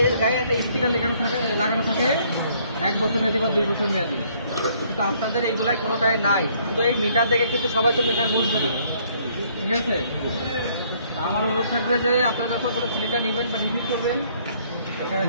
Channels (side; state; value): both; inverted; correlation -0.64